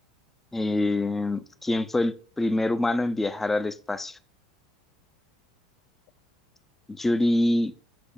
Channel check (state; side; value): normal; both; correlation 0.96